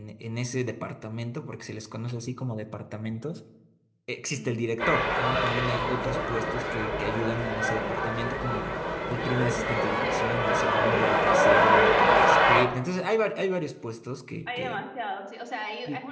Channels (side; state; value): both; identical; correlation 1.00